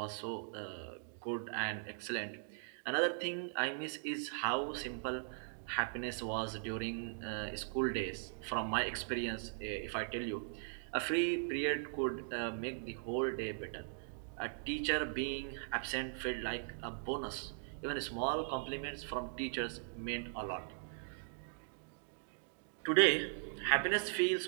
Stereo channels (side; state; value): left; silent; digital silence